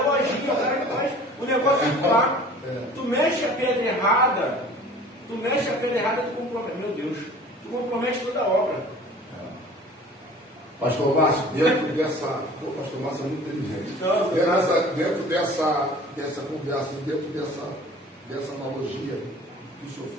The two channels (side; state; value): both; normal; correlation 0.46